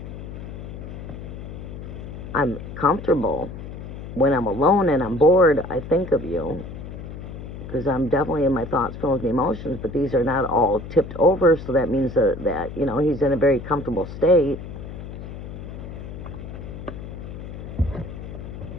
I'm comfortable. When I'm alone and I'm bored, I think of you, because I'm definitely in my thoughts, feelings, and emotions, but these are not all tipped over, so that means that you know, he's in a very comfortable state.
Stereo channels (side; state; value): left; noise; hum, 10 dB below the sound